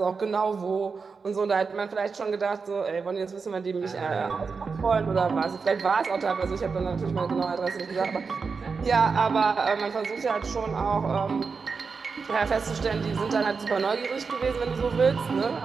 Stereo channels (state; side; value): quieter; left; 5.0 dB